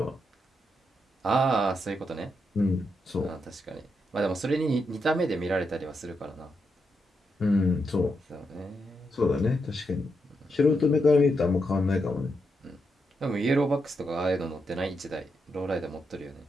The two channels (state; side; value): normal; both; correlation 0.83